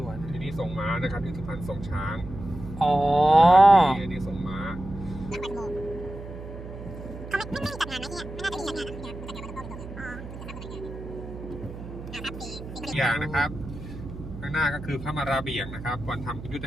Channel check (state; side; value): noise; right; hum, 11 dB below the sound